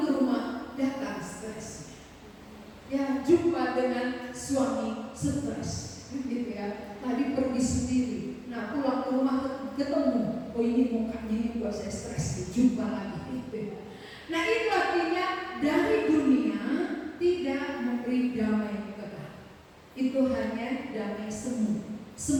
ke rumah datang stresnya. Ya, jumpa dengan suami stres, gitu ya. Tadi pergi sendiri. Nah, pulang ke rumah ketemu. Oh ini mukanya ini buat saya stres. Jumpa lagi. Gitu. Nah, itu artinya dari dunia tidak memberi damai kekal. Itu hanya damai semu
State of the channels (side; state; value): both; identical; correlation 1.00